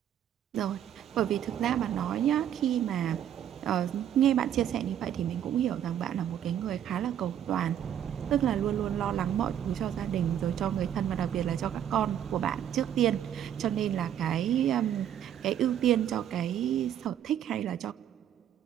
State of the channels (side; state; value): left; quieter; 10.1 dB